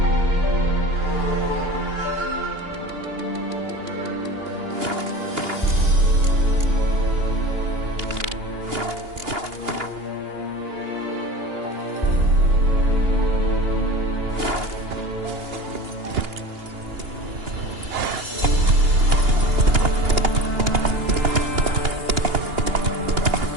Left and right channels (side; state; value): left; late; 2.8 ms